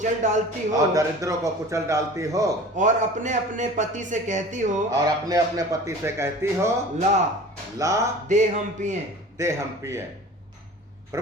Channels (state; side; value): normal; both; correlation 0.41